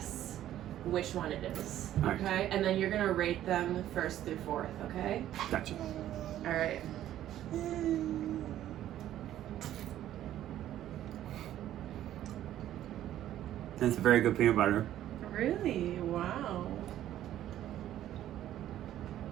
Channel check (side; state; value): left; quieter; 12.4 dB